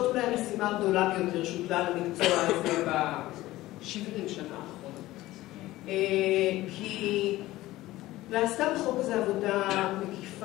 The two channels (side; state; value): right; quieter; 16.9 dB